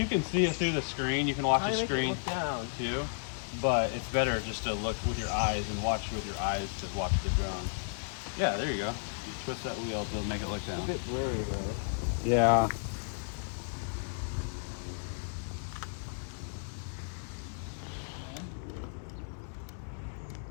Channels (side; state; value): right; silent; digital silence